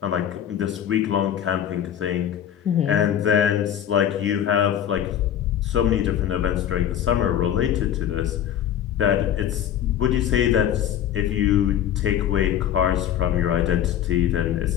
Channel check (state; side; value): quieter; right; 10.2 dB